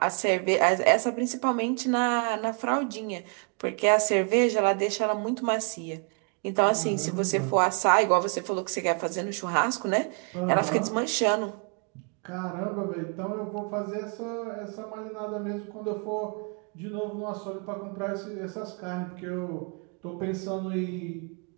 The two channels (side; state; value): left; quieter; 38.9 dB